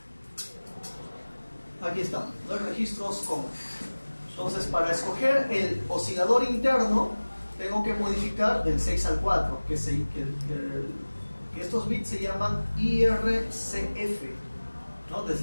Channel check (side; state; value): both; inverted; correlation -1.00